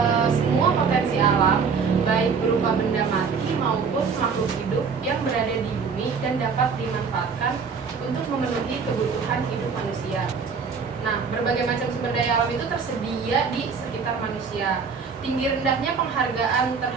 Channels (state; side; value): quieter; left; 5.6 dB